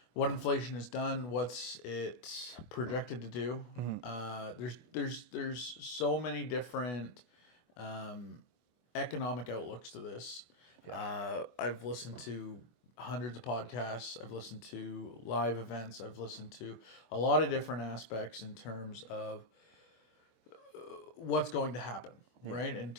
what inflation has done, what's it projected to do. There's so many different economic outlooks to this. I've listened to hundreds of podcasts. I've listened to live events. I've listened to a lot of different aspects in terms of what's going to happen, right? In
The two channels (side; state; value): right; late; 24 ms